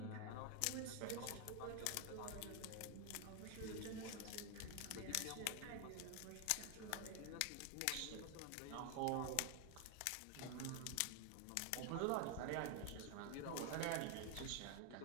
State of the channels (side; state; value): both; different; correlation 0.01